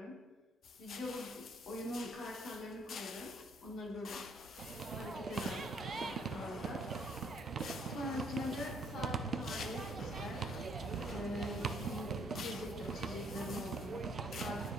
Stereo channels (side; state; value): both; normal; correlation 0.65